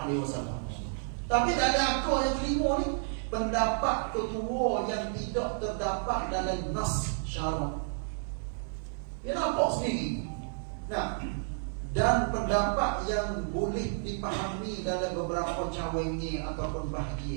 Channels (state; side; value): silent; left; digital silence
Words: Tapi tak ada aku yang kelima ni, pendapat ketua yang tidak terdapat dalam nas syarak. Dia nampak sendiri. Dan pendapat yang boleh dipahami dalam beberapa cawangi ataupun